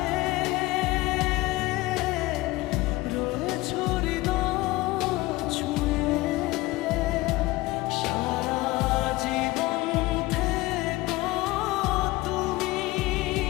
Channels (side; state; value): right; quieter; 19.6 dB